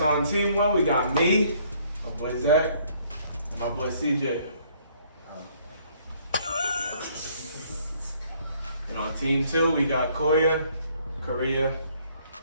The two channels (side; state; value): both; inverted; correlation -0.63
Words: on team one, we got me, my boy Zach, and my boy CJ. And on team two, we got Koya, Korea,